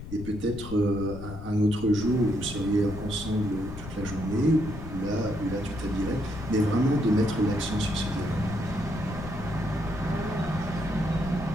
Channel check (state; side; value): noise; left; rumble, 11 dB below the sound